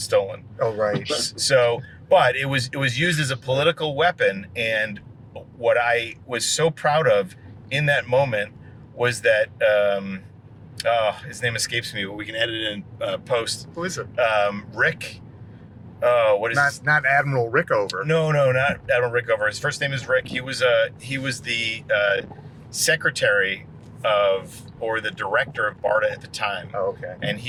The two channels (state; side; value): identical; both; correlation 1.00